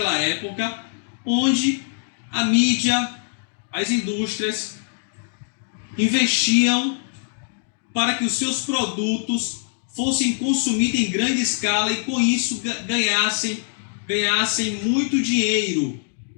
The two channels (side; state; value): right; silent; digital silence